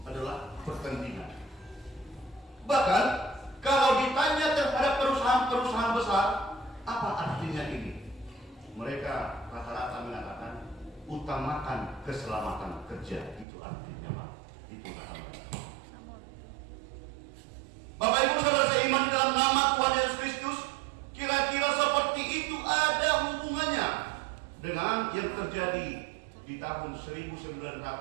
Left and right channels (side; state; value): left; drops out; at 13.5 s